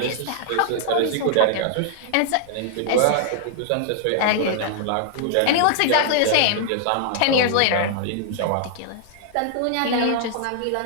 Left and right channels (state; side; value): different; both; correlation -0.01